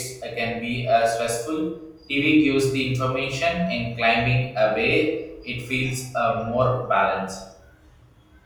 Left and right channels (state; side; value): identical; both; correlation 1.00